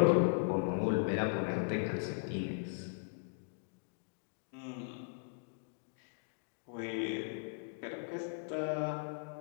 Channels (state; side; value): silent; right; digital silence